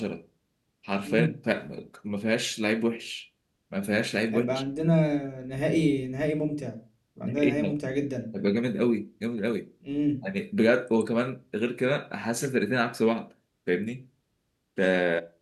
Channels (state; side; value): identical; both; correlation 1.00